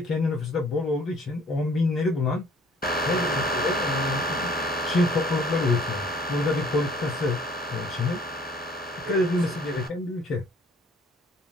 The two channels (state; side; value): normal; both; correlation 0.55